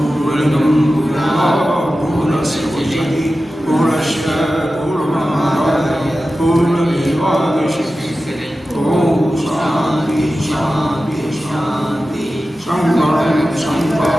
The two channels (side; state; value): both; normal; correlation 0.94